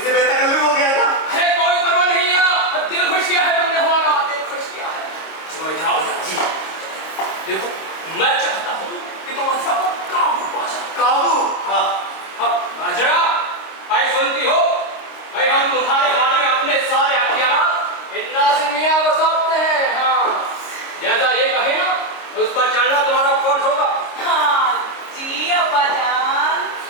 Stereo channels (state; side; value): late; right; 26 ms